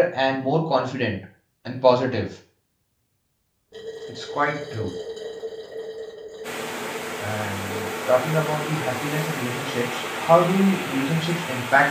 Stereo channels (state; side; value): identical; both; correlation 1.00